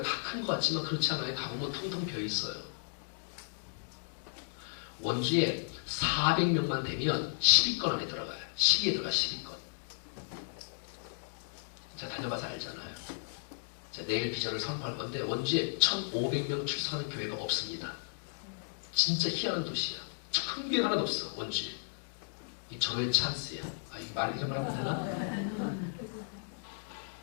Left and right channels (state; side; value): silent; right; digital silence